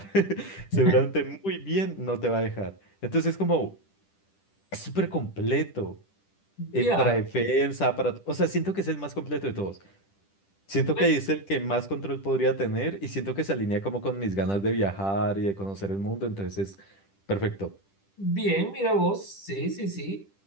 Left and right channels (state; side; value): late; right; 10 ms